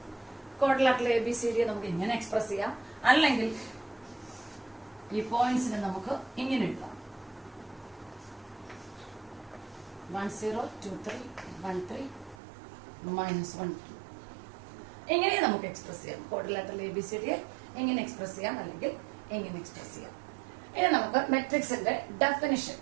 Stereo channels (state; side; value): drops out; left; at 12.4 s